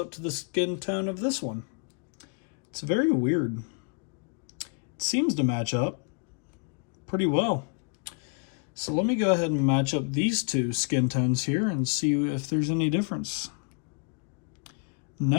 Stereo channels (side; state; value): right; quieter; 37.9 dB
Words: to the skin tone of this one. It's very weird. It seems to match up pretty well. So let me go ahead and match up these two skin tones here and see if there's any difference.